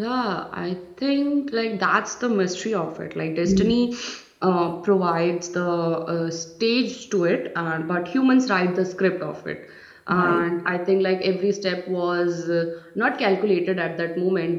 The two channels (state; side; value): identical; both; correlation 1.00